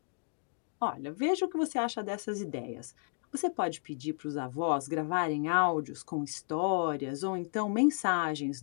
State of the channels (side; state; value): right; silent; 56 dB below the other